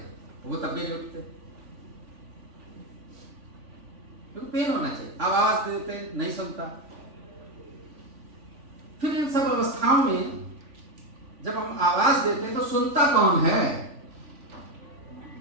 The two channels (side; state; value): left; late; 3.4 ms